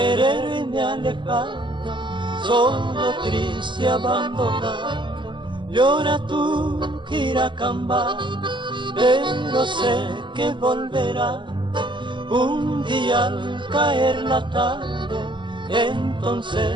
me ha alejado, solo, triste, abandonado, llora tu Quiracambá, pero sé que volverá un día al caer la tarde.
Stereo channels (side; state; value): left; late; 0.23 ms